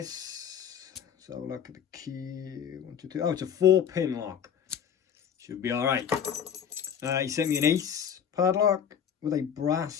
So look at the key. 1, 2, 3. Oh, it's a 4-pin lock. Should be all right. He sent me an Ace padlock with a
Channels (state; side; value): quieter; right; 8.4 dB